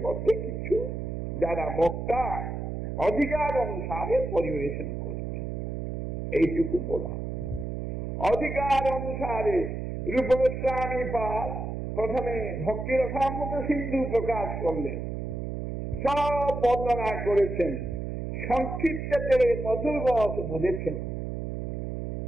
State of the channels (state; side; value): noise; right; hum, 4 dB below the sound